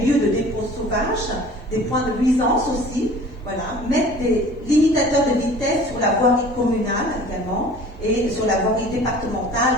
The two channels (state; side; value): normal; both; correlation 0.46